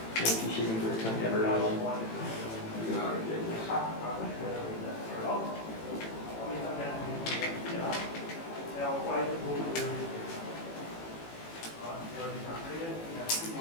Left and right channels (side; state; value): right; late; 18 ms